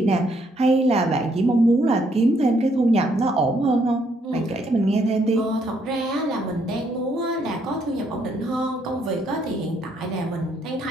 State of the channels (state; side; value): normal; both; correlation 0.71